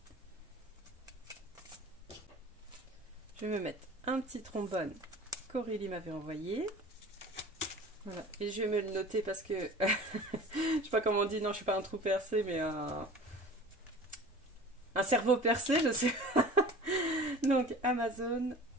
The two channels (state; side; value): normal; both; correlation 0.41